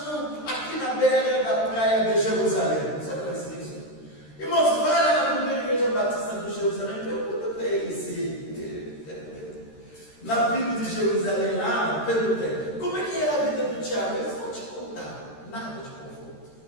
aqui na beira da praia de Jerusalém. Você conhece isso? Irmãos, vai lá na primeira igreja batista de Jerusalém e pergunta para ele se na Bíblia de Jerusalém lá, perguntei, como é que era a vida do Tiago? Eles vão te contar, nada de conforto.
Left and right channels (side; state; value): right; late; 13 ms